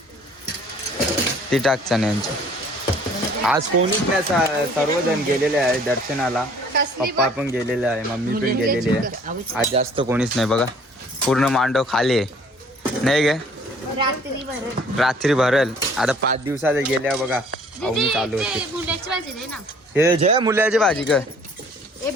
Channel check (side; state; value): both; normal; correlation 0.55